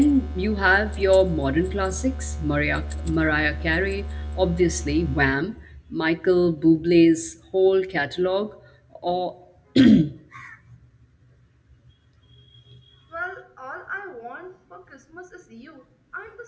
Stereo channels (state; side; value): identical; both; correlation 1.00